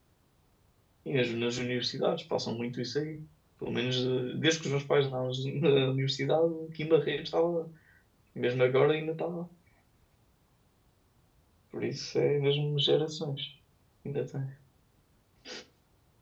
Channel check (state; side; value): identical; both; correlation 1.00